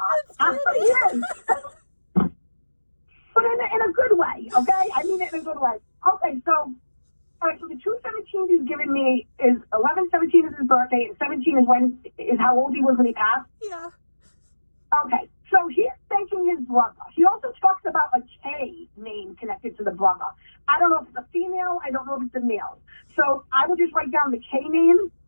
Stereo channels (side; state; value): both; inverted; correlation -1.00